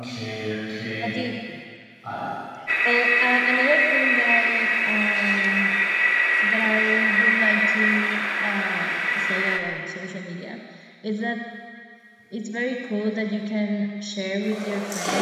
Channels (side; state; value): both; identical; correlation 1.00